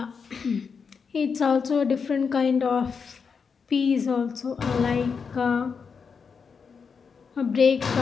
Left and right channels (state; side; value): quieter; right; 5.8 dB